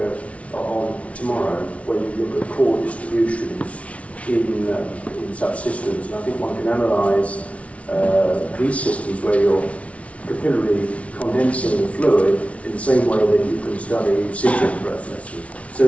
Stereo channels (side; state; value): right; late; 0.064 ms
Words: on tomorrow, when you look at core distributions in such systems. And I think one can analyse these systems where you're capillarily condensing the fluid in the same way that you can study sintering processes. So